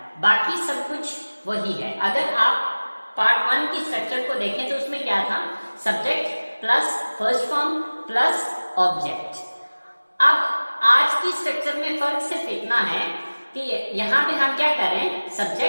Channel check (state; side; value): inverted; both; correlation -1.00